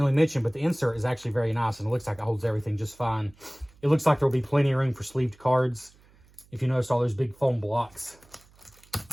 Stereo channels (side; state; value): right; noise; hum, 28 dB below the sound